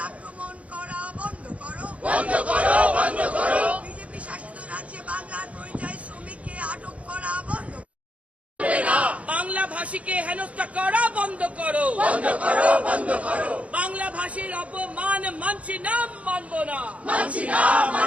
আক্রমণ করা বন্ধ করো। বিজেপি শাসিত রাজ্যে বাংলার পরিযায়ী শ্রমিককে আটক করা বন্ধ করো। বাংলা ভাষীকে হেনস্থা করা বন্ধ করো। বাংলা ভাষীর অপমান মানছি না, মানব না।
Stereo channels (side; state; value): left; late; 0.065 ms